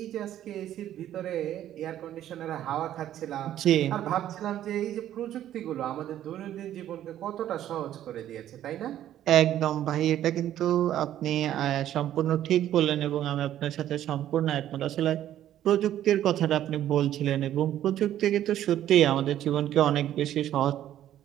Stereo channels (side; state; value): left; quieter; 11.9 dB